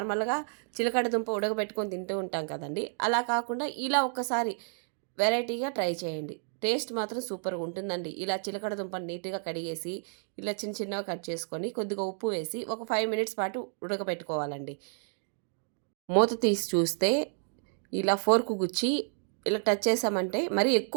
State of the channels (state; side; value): silent; left; 57 dB below the other